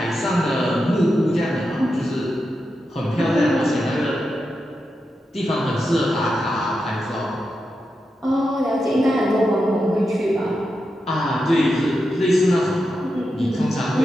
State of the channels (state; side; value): normal; both; correlation 0.88